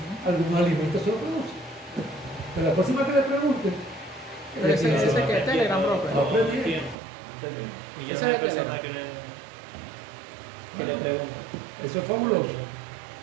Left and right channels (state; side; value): drops out; left; at 7.0 s